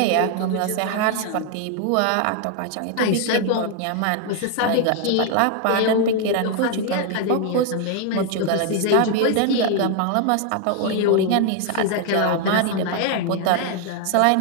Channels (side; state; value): both; different; correlation 0.00